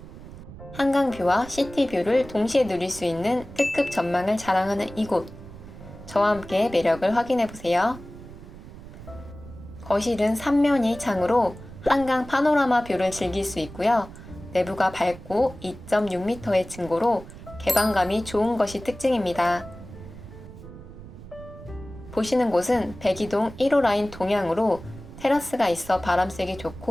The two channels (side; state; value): right; noise; rumble, 16 dB below the sound